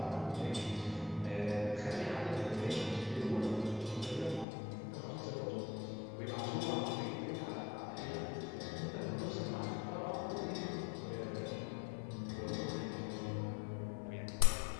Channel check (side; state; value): right; drops out; at 4.5 s